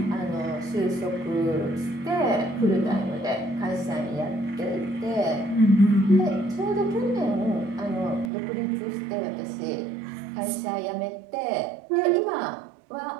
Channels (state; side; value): drops out; left; at 8.3 s